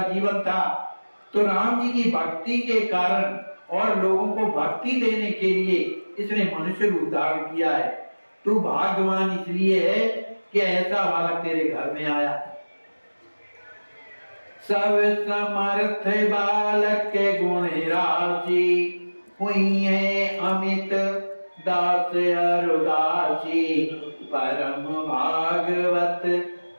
जीवन था, तो राम जी की भक्ति के कारण और लोगों को भक्ति देने के लिए इसने मनुष्य रूप धारण किया है। तू भाग्यवान इसलिए है कि ऐसा बालक तेरे घर में आया। सब समर्थ बालक के गुण राशि, हुई है अमित दास अरुदासी, परम भागवत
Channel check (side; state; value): both; inverted; correlation -1.00